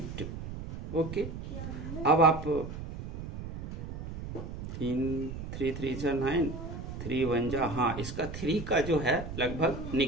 2, ओके। अब आप 3 3 3 9 3 1 जा, हाँ इसका 3 का जो है लगभग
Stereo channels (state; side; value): noise; right; rumble, 8 dB below the sound